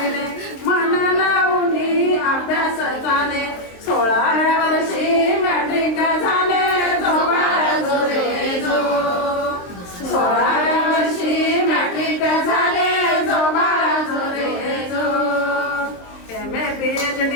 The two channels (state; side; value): late; right; 23 ms